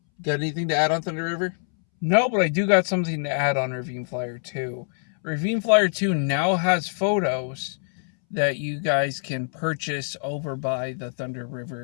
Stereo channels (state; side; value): silent; right; 62 dB below the other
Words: anything to add on Thunder River? No, but I do got something to add on Ravine Flyer 2. Ravine Flyer 2 now has photos that you guys can purchase over by the Thunder